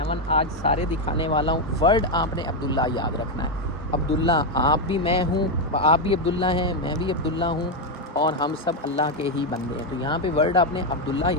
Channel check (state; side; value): normal; both; correlation 0.04